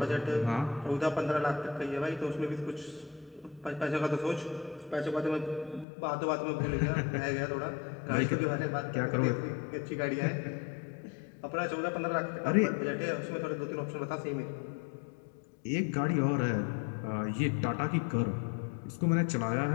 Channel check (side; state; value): right; drops out; at 5.9 s